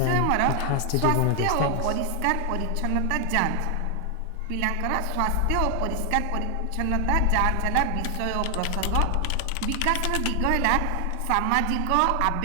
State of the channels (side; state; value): both; different; correlation 0.00